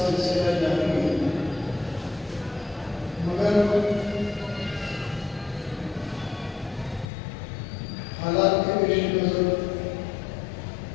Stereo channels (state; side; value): drops out; right; at 7.1 s